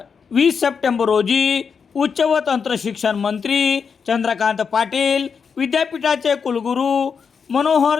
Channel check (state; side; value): quieter; right; 6.1 dB